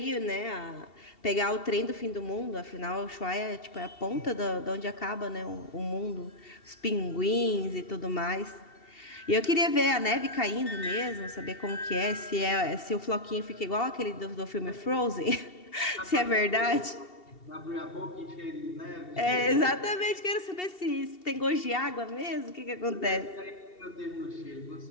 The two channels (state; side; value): late; right; 2.7 ms